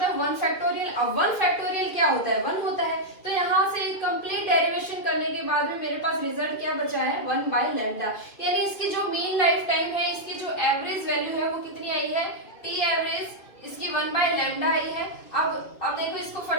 है 1 फैक्टोरियल। अब 1 फैक्टोरियल क्या होता है, 1 होता है। तो यहाँ से कंप्लीट डेरिवेशन करने के बाद में मेरे पास रिजल्ट क्या बचा है, 1 बाय लैम्डा, यानी इसकी जो मीन लाइफ टाइम है, इसकी जो एवरेज वैल्यू है वो कितनी आई है, टी एवरेज इसकी 1 बाय लैम्डा आई है। अब देखो इसको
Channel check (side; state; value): right; late; 2.5 ms